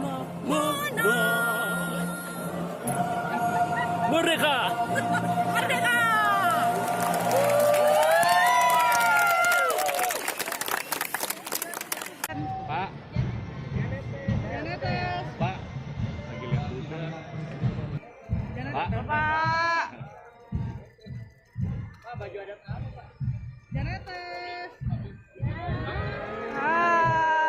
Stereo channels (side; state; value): both; identical; correlation 1.00